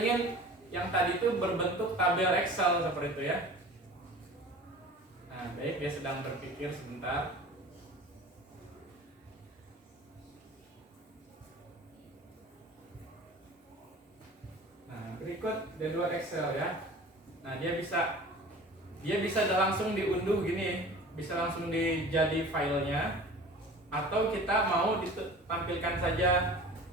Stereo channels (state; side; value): normal; both; correlation 0.41